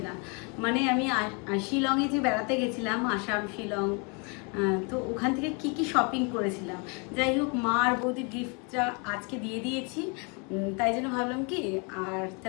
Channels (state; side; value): quieter; right; 33.6 dB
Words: না। মানে আমি শিলংয়ে যে বেড়াতে গেছিলাম, আসাম শিলং, তো ওখান থেকে কি কি শপিং করেছিলাম। যাই হোক, মা আর বৌদির গিফটটা আজকে দিয়ে দিয়েছি, তাই জন্য ভাবলাম কি আর